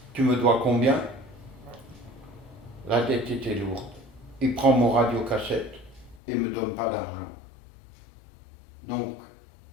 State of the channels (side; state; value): right; drops out; at 6.2 s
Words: tu me dois combien? La dette était lourde. Il prend mon radiocassette et ne me donne pas d'argent. Donc,